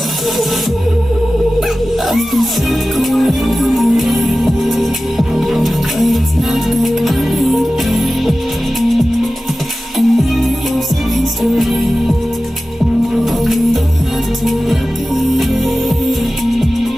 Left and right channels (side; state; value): both; normal; correlation 0.95